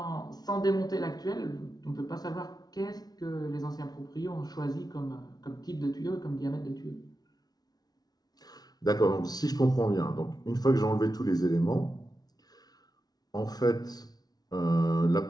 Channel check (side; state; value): right; late; 0.19 ms